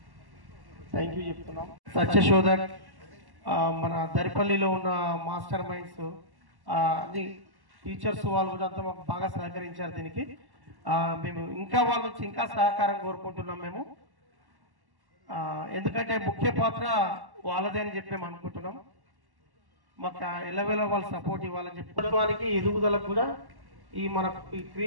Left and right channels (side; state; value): left; late; 1.1 ms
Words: థ్యాంక్ యూ చెప్తున్నాం. సత్యశోధక్ మన దరిపల్లిలో ఉన్న మాస్టర్ మైండ్స్ అన్ని టీచర్స్ వాళ్ళు కూడా అంతా మాకు బాగా సహకరించారు. దీనికి మేము ఇంకా వాళ్ళ నుంచి ఇంకా సహకారం కోరుకుంటున్నాం. మేము ఎందుకంటే ముఖ్య పాత్ర వాళ్ళదే అని చెప్పి మేము అనుకుంటున్నాం. మాకు ఎల్లవేళ వాళ్ళు సపోర్ట్ ఇవ్వాలని చెప్పి ప్రభుత్వానికి ఎదుగుదలకు కూడా ఈ